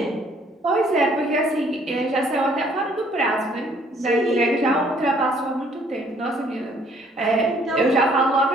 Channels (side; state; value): both; normal; correlation 0.62